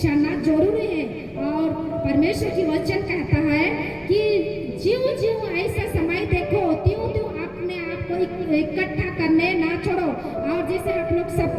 जाना जरूरी है। और परमेश्वर की वचन कहता है कि ज्यों ज्यों ऐसा समय देखो त्यों त्यों अपने आप को इकट्ठा करने ना छोड़ो। और जैसे आप लोग सब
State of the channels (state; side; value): identical; both; correlation 1.00